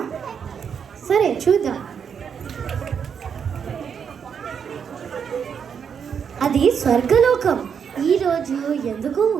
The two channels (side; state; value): left; quieter; 7.1 dB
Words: సరే చూద్దాం. అది స్వర్గలోకం. ఈరోజు ఎందుకు